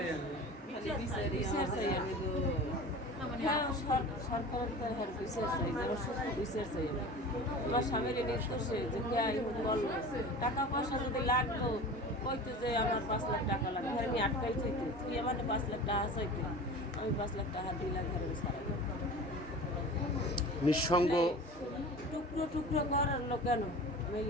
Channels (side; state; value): both; normal; correlation 0.36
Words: আমার স্বামীর নির্দোষে যে বললো টাকা পয়সা যদি লাগতো, কইতো যে আমার 5 লাখ টাকা লাগবে, আমি আটকাই চাইতো, তুই আমার 5 লাখ টাকা চাইতো, আমি 5 লাখ টাকা দিই লাখ ঘরে সারাই। নিঃসঙ্গ টুকরো টুকরো করার লোক কেন? আমি